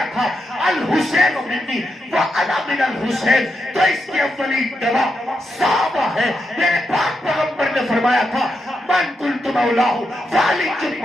تھا الحسین منی وانا من الحسین, تو اس کے اولین گواہ صحابہ ہے. میرے پاک پیغمبر نے فرمایا تھا من قلت مولاہ فعلی چن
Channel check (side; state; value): both; normal; correlation 0.85